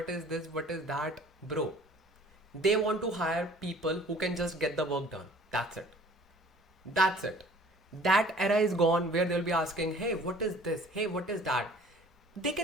is this, what is that, bro. They want to hire people who can just get the work done. That's it. That era is gone where they'll be asking, hey, what is this? Hey, what is that? They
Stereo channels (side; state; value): both; normal; correlation 0.51